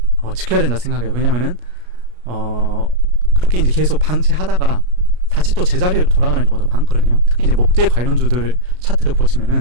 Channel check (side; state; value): left; late; 33 ms